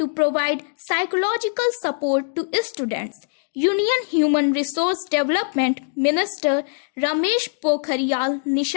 provide psychological support to students. Union Human Resource Development Minister Ramesh Pokhariyal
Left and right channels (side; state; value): right; silent; digital silence